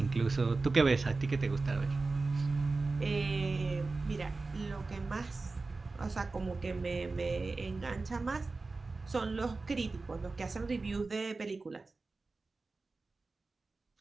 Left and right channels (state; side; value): quieter; left; 3.7 dB